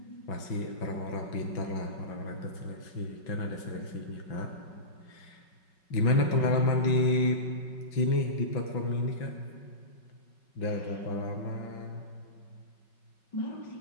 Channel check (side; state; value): right; late; 5.4 ms